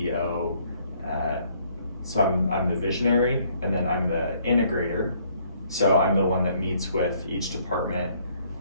So I'm the visionary, and then I'm the integrator. So I'm the one that meets with each department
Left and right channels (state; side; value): inverted; both; correlation -0.65